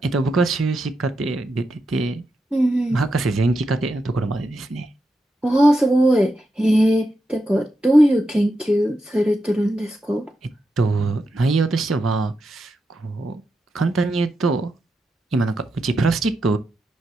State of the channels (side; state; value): both; normal; correlation 0.87